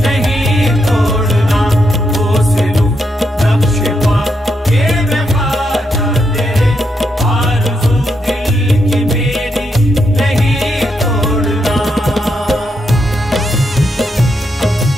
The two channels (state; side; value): normal; both; correlation 0.81